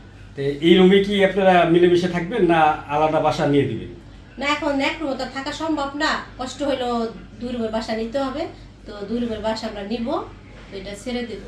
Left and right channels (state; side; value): identical; both; correlation 1.00